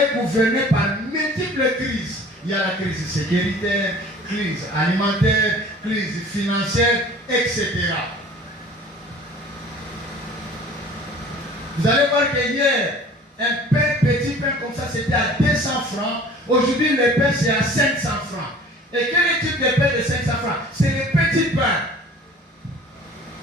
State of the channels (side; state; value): both; normal; correlation 0.47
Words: gouverné par multiples crises. Il y a la crise sécuritaire, crise alimentaire, crise financière, etc. Vous allez voir que hier, un petit pain comme ça, c'était à 200 francs. Aujourd'hui, le pain, c'est à 500 francs. Et quel est le type de pain de 500 francs? C'est le petit pain.